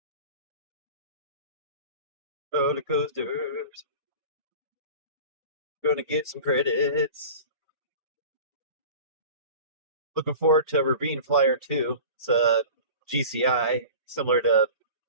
Roller coasters. Gonna get some credits. Looking forward to Ravine Flyer 2. It's a GCI, similar to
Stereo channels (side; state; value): both; inverted; correlation -0.38